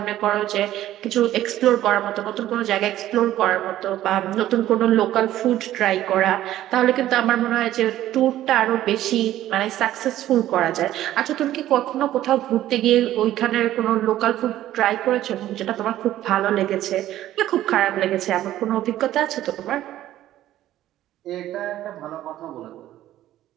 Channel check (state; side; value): quieter; left; 13.4 dB